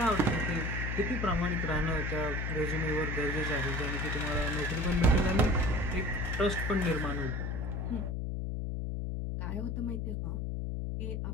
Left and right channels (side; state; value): left; noise; hum, 2 dB below the sound